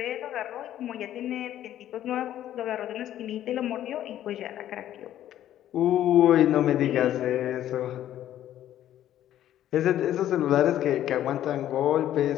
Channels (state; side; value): quieter; right; 12.1 dB